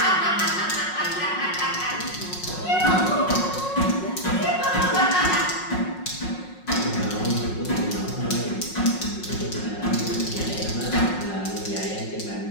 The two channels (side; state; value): right; late; 5.5 ms